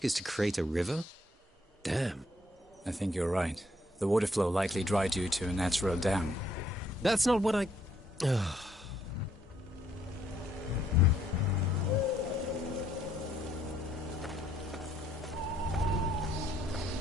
is to create a river? Damn. I think you're right. The water flow likely dried due to a natural dam. That's not what I...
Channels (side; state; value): both; normal; correlation 0.69